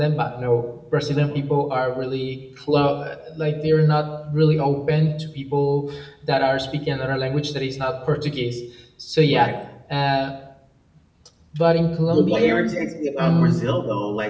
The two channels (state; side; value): identical; both; correlation 1.00